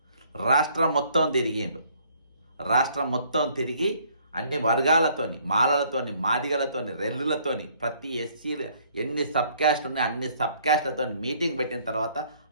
రాష్ట్రం మొత్తం తిరిగిండు. రాష్ట్రం మొత్తం తిరిగి అన్ని వర్గాలతోని, మాలలతోని, మాదిగలతోని, రెల్లులతోని, ప్రతి ఎస్సీ ఎన్ని సబ్ క్యాస్ట్ ఉన్నాయి అన్ని సబ్ క్యాస్ట్లతో మీటింగ్ పెట్టిన తర్వాత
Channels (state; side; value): inverted; both; correlation -0.62